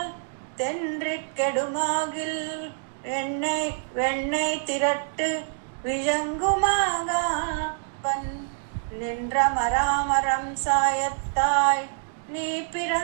தென்றிக்கெடுமாகில் எண்ணெய் வெண்ணெய் திரட்டு விழங்குமாகாவன் நின்ற மராமரம் சாயத்தாய் நீ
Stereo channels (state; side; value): silent; left; digital silence